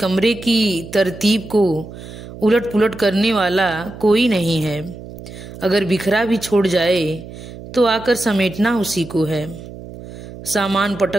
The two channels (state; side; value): noise; right; hum, 14 dB below the sound